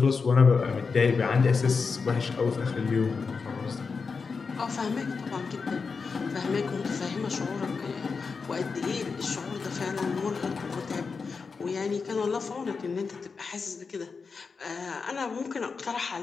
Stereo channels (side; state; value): right; quieter; 5.0 dB